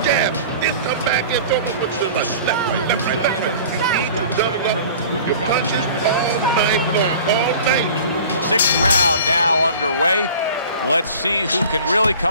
jab. Then come back and throw them with the left, right, left, right, left, right. You need to double up with your punches all night long, all night. 6th round now underway. Let's see who can really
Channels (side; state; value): both; inverted; correlation -0.43